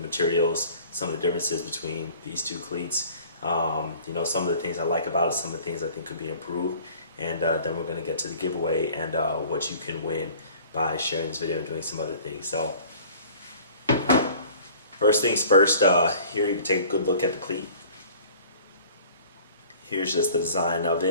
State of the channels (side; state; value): both; inverted; correlation -0.49